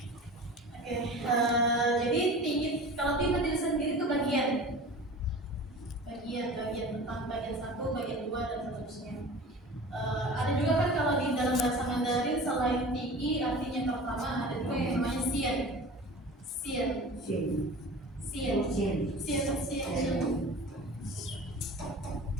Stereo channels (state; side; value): normal; both; correlation 0.37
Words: Oke, jadi tinggi kalau di berdiri sendiri itu bagian tentang bagian 1, bagian 2 dan seterusnya. Ada juga kan kalau di dalam bahasa Mandarin selain tinggi artinya pertama ada juga yang namanya sien. Sien